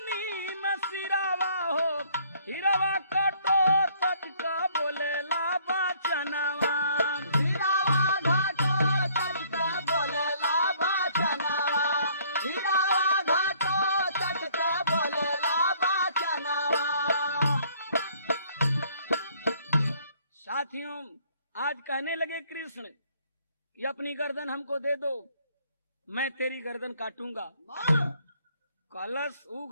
में सिरावा हो, हिरवा कटो तत्क बोलेला बचनवा। हिरावा घाटो चटक बोलेला बचनवा। हिरावा घाटो चटक बोलेला बचनवा। साथियों, आज कहने लगे कृष्ण कि अपनी गर्दन हमको दे दो, मैं तेरी गर्दन काटूंगा। कलश ऊ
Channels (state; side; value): inverted; both; correlation -0.62